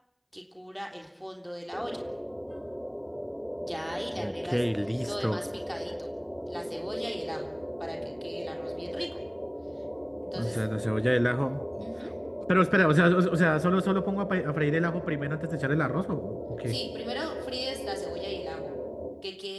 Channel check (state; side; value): identical; both; correlation 1.00